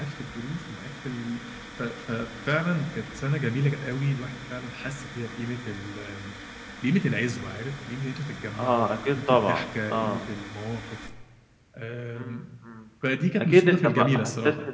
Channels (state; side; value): identical; both; correlation 1.00